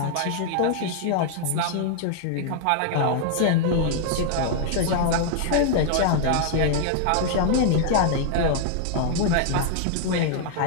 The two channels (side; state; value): both; different; correlation 0.00